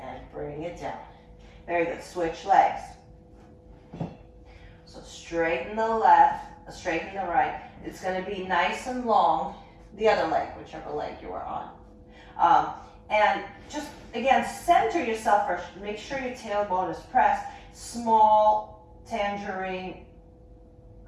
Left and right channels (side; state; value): both; identical; correlation 1.00